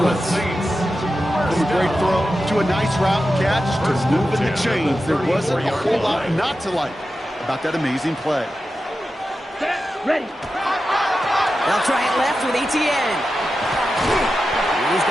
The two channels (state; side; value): normal; both; correlation 0.91